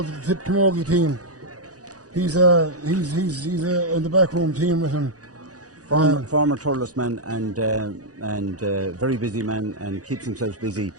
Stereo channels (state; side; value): late; left; 0.67 ms